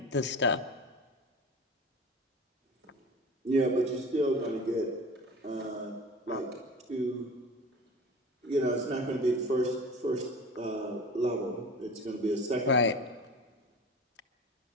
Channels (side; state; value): both; normal; correlation 0.35